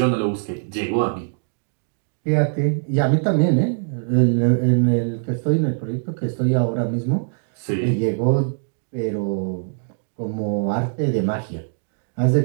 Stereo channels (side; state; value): left; silent; digital silence